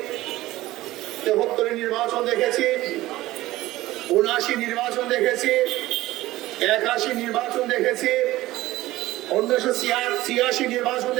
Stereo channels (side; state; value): left; quieter; 17.0 dB